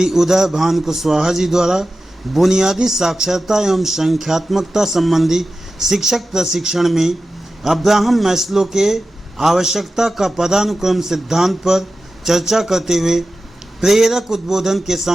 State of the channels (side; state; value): both; normal; correlation 0.94